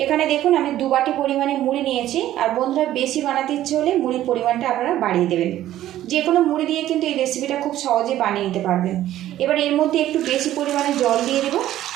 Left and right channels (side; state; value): left; quieter; 13.3 dB